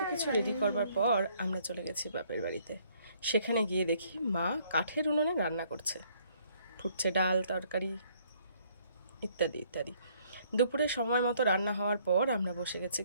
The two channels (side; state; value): both; inverted; correlation -0.64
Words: কিছু রেডি করবার পর আমরা চলে গেছি বাপের বাড়িতে। সেখানে গিয়ে দেখি মা কাঠের উনুনে রান্না করছে, ফুটছে ডাল তরকারি ইত্যাদি ইত্যাদি। দুপুরে সময় মতো রান্না হওয়ার পর আমরা বসে গেছি